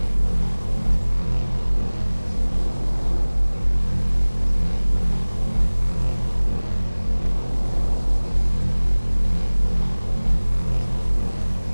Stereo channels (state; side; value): inverted; both; correlation -0.99